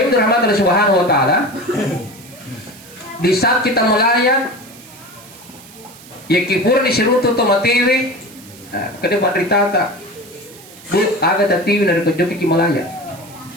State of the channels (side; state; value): right; noise; hiss, 21 dB below the sound